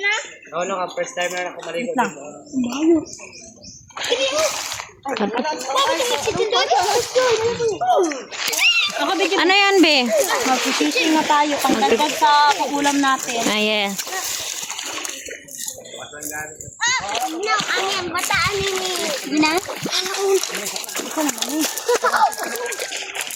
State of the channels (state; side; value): identical; both; correlation 1.00